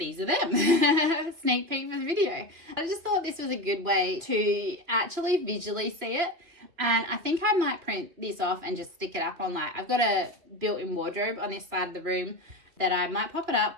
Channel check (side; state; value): left; late; 3.1 ms